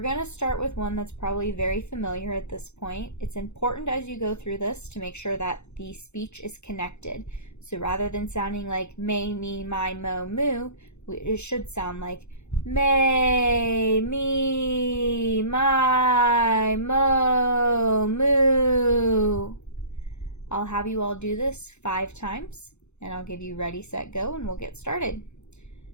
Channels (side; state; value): right; late; 0.82 ms